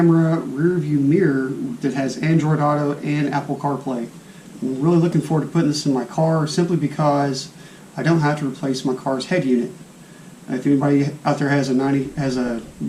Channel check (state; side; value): identical; both; correlation 1.00